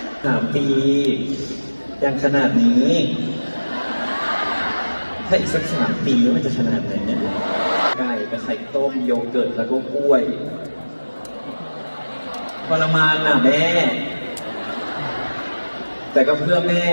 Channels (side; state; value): both; inverted; correlation -1.00